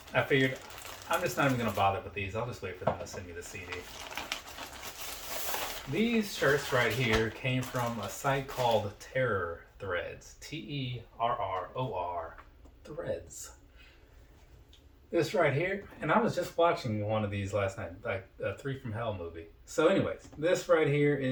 I figured I'm just not even going to bother with these. I'll just wait for them to send me the CD. These shirts right here came from a site called Terror Threads. Terror Threads. This right here, and I was just watching one of these last night, like a 3 from Hell movie. So anyways, this right here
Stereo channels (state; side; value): identical; both; correlation 1.00